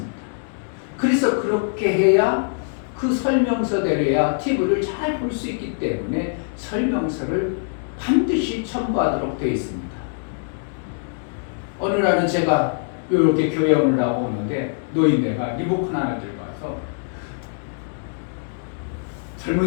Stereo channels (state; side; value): silent; right; digital silence